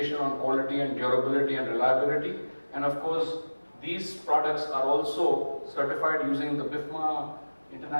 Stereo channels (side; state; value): both; inverted; correlation -1.00